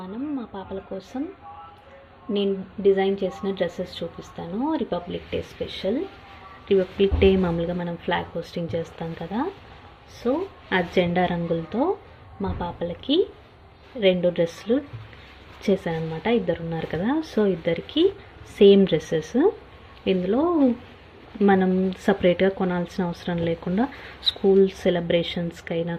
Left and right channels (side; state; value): both; identical; correlation 1.00